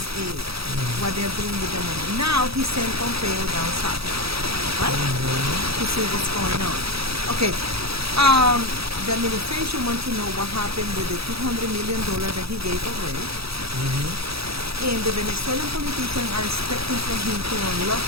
what they're doing with the money. Now he sent Pompeo down south, right, to see what's going on. Okay, the administration wants to know what happened with the $200 million that he gave already. And the Venezuelan politicians are expecting from him to unlock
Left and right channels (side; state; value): left; late; 0.77 ms